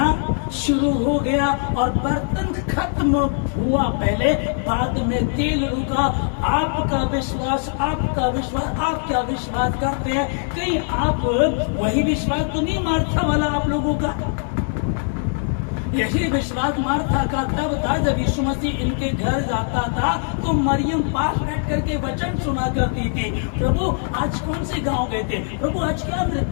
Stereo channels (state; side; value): silent; right; 56 dB below the other